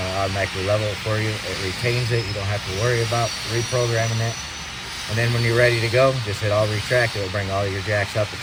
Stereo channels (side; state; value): both; identical; correlation 1.00